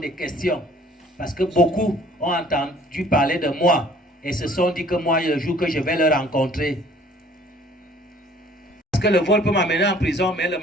questions. Parce que beaucoup ont entendu parler de moi et se sont dit que moi, le jour que je vais le rencontrer, parce que le vol peut m'amener en prison, mais le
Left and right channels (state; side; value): normal; both; correlation 0.55